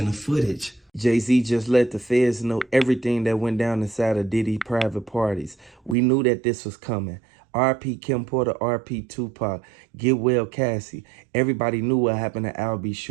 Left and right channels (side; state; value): left; drops out; at 6.0 s